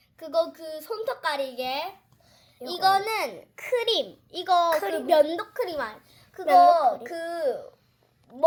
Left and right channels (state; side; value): identical; both; correlation 1.00